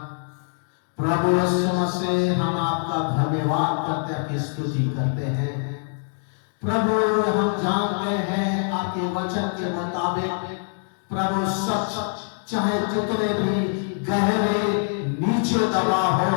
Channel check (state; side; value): silent; right; 60 dB below the other